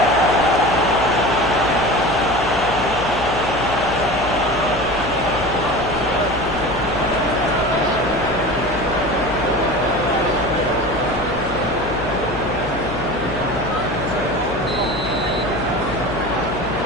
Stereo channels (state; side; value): noise; left; hum, 10 dB below the sound